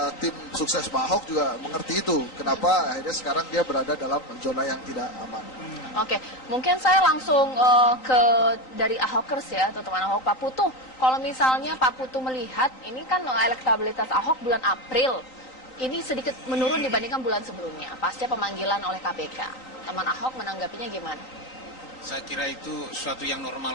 tim sukses Pak Ahok juga mengerti itu. Kenapa akhirnya sekarang dia berada dalam zona yang tidak aman. Oke, mungkin saya langsung ke dari Ahokers ya, atau teman Ahok, Pak Putu. Kalau misalnya Pak Putu melihat, ini kan elektabilitas Ahok bulan April, ini sedikit menurun dibandingkan bulan sebelumnya, pasca pemanggilan oleh KPK. Teman Ahok menanggapinya gimana? Saya kira itu suatu yang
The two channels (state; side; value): late; right; 3.9 ms